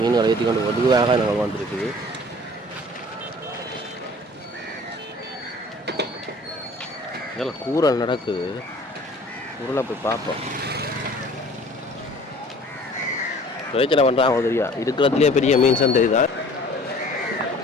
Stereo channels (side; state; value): both; normal; correlation 0.49